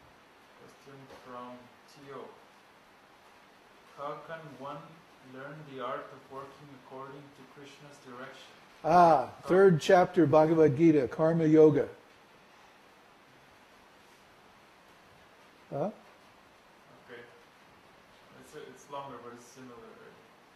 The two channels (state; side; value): identical; both; correlation 1.00